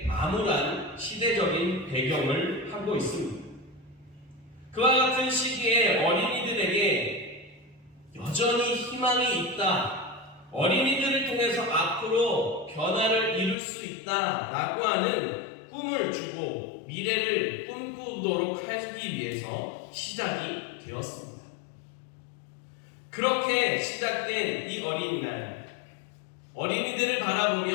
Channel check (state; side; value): drops out; right; at 13.6 s